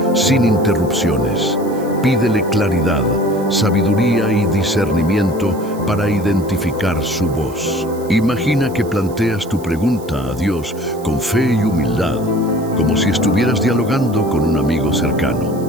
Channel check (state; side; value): noise; right; hiss, 21 dB below the sound